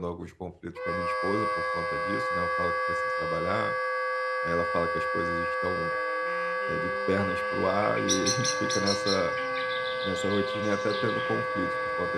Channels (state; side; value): identical; both; correlation 1.00